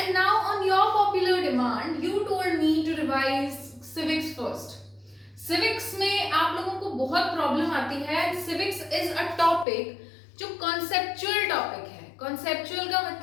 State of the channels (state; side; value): drops out; right; at 9.7 s